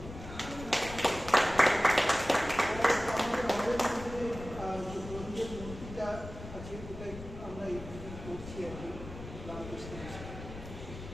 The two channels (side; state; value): left; noise; rumble, 12 dB below the sound